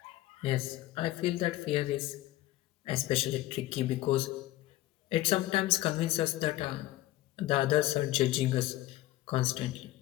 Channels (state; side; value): quieter; right; 16.0 dB